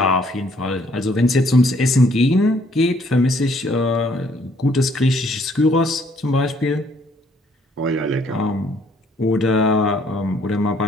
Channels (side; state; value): both; normal; correlation 0.64